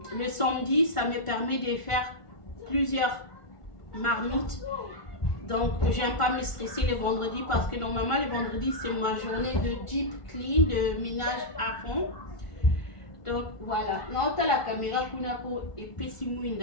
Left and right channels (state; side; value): late; right; 1.5 ms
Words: le samedi, ça me permet de faire plusieurs marmites. Donc, j'aime pas me stresser le vendredi parce que normalement, le vendredi, c'est ma journée de deep clean, de ménage à fond. Donc, voilà. Non, tu as la caméra et pesi